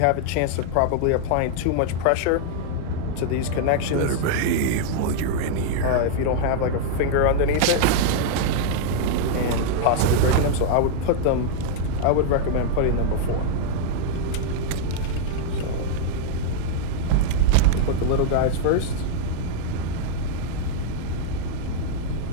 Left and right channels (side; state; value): both; different; correlation -0.01